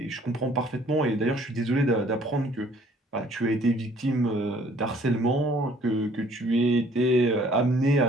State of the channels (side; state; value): both; normal; correlation 0.58